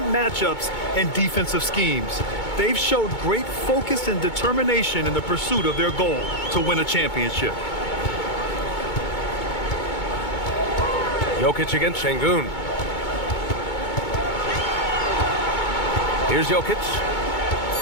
matchups and defensive schemes. They've showed great focus and determination in the pursuit of their goal to win a championship. Jokic against Şengün. Here's Jokic.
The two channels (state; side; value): late; right; 2.2 ms